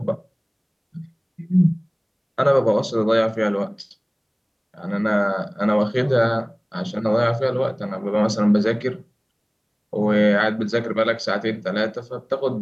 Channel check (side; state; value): both; identical; correlation 1.00